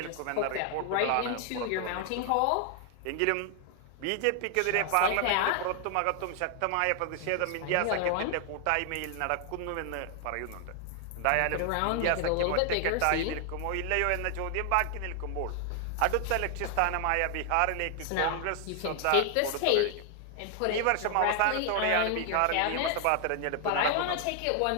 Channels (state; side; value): different; both; correlation 0.00